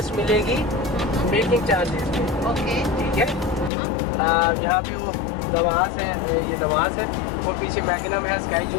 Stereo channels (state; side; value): drops out; right; at 3.7 s